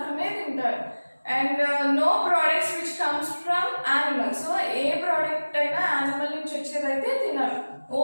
తింటారు. And no products which comes from animals. So ఏ ప్రోడక్ట్ అయినా యానిమల్ నుంచి వచ్చేదైతే తినరు.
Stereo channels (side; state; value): both; inverted; correlation -1.00